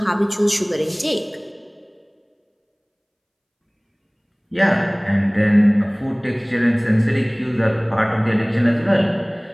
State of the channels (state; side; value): identical; both; correlation 1.00